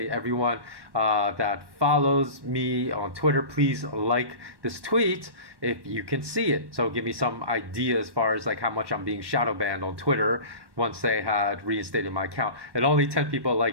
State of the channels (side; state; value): left; late; 1.1 ms